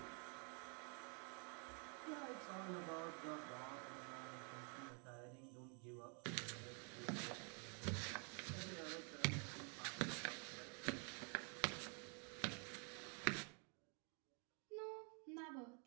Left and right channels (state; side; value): quieter; left; 38.3 dB